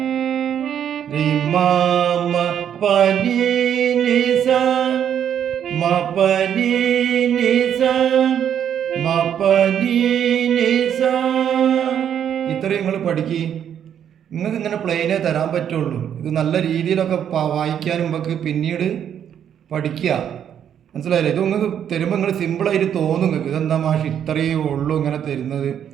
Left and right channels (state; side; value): quieter; left; 9.2 dB